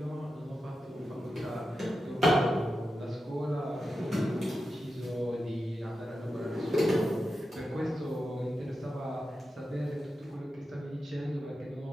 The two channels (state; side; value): normal; both; correlation 0.90